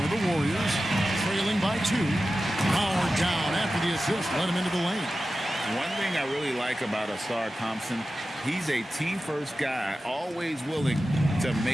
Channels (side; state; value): both; normal; correlation 0.94